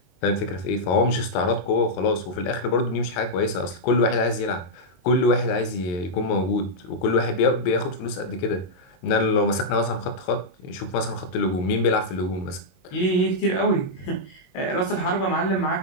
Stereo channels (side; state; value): right; late; 22 ms